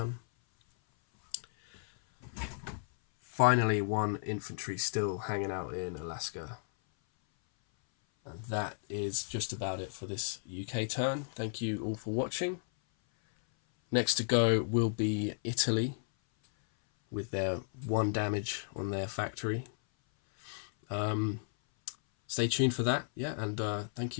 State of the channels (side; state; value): right; silent; 55 dB below the other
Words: Finally, 1 infantry still hanging out in Alaska. And that is just about it for this UK turn. Thank you all for watching. Next to go will be Italy with their 1 damage on their factory. Stay tuned for that, yeah, and thank